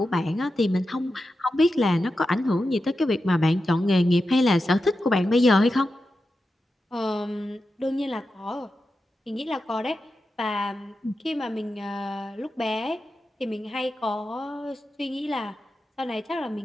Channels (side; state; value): both; normal; correlation 0.90